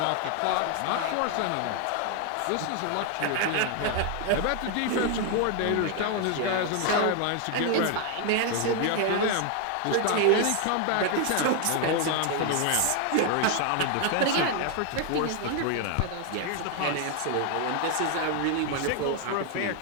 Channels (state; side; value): different; both; correlation 0.00